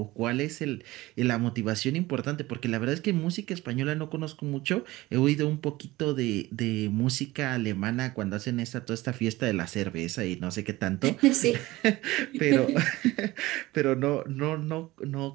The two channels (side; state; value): left; quieter; 18.9 dB